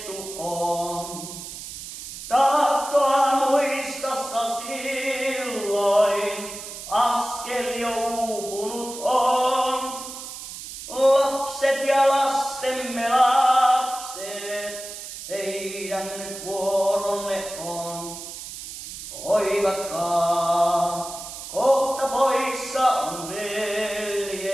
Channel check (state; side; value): noise; right; hiss, 10 dB below the sound